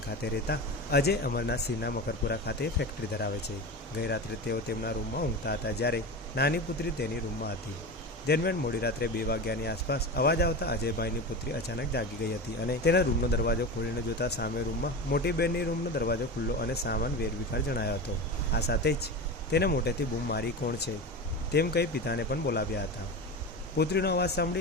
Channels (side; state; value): both; normal; correlation 0.25